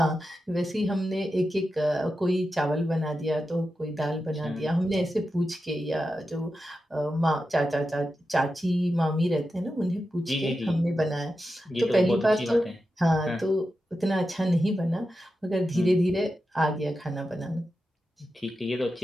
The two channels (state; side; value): normal; both; correlation 0.90